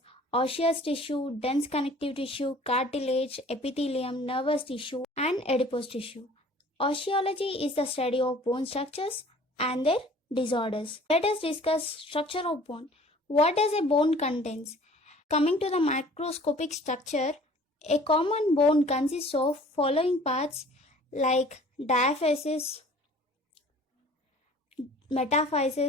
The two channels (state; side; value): normal; both; correlation 0.50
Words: osseous tissue, dense connective tissue, cartilage, epithelium, nervous tissue, and adipose tissue. Osteology is the study of bone structures and their disorders. Let us discuss structure of bone. What does a bone contains? Coming to the microscopic structure, a common bone consists of following parts like diaphysis,